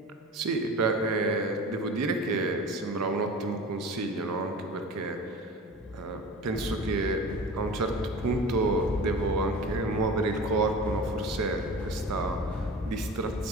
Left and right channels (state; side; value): normal; both; correlation 0.36